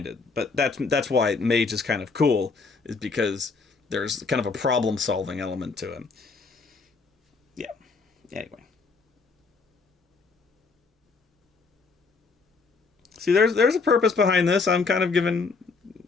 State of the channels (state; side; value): quieter; right; 4.5 dB